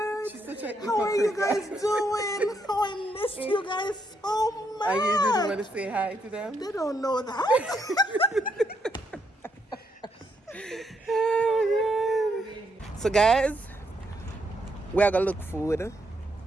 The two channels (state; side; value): normal; both; correlation 0.76